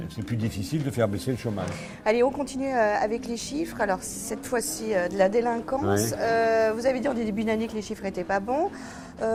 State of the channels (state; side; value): identical; both; correlation 1.00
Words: plus difficile de faire baisser le chômage. Allez, on continue avec les chiffres. Alors, cette fois-ci, de la délinquance. Ouais. Vous avez dit en début d'année que les chiffres n'étaient pas bons.